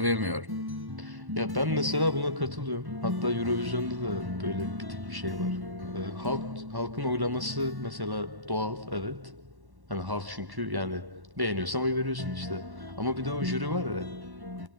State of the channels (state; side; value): late; left; 1.1 ms